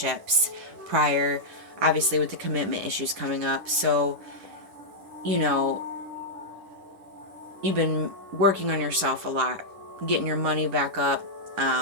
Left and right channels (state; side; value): late; left; 11 ms